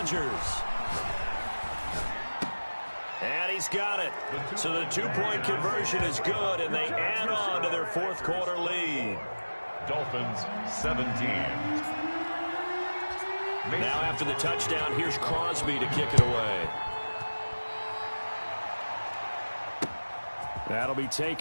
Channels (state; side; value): inverted; both; correlation -1.00